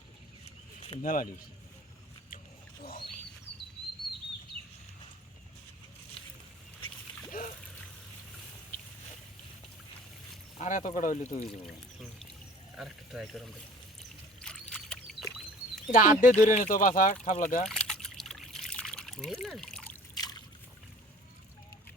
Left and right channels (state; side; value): normal; both; correlation 0.48